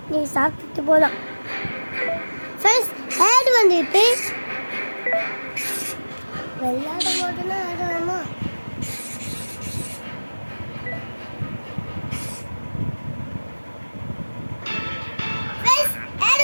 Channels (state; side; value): inverted; both; correlation -1.00